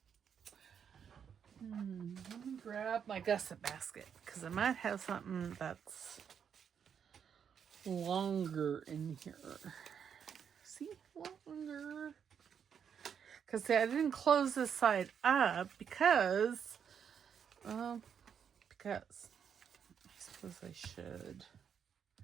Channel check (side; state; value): left; quieter; 7.7 dB